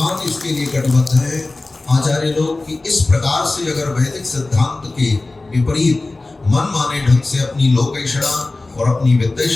इसके लिए कटिबद्ध हैं, आचार्य लोग, कि इस प्रकार से अगर वैदिक सिद्धांत के विपरीत मनमाने ढंग से अपनी लोकैषणा और अपनी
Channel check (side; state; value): right; quieter; 3.2 dB